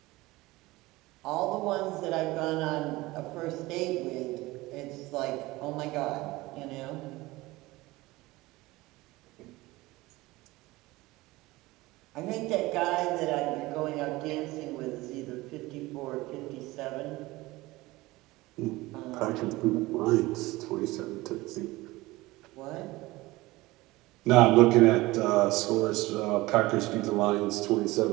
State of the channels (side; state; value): left; quieter; 20.0 dB